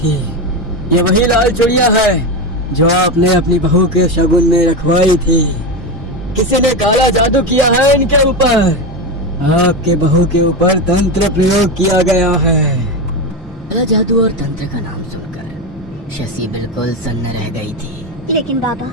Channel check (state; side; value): normal; both; correlation 0.16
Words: ये वही लाल चूड़ियां है जो आपने अपनी बहू के शगुन में रखवाई थी। किसी ने काला जादू किया है इनके ऊपर। आपके बहू के ऊपर तंत्र प्रयोग किया गया है। काला जादू और तंत्र का नाम सुनकर शशि बिल्कुल सन्न रह गई थी। लेकिन बाबा,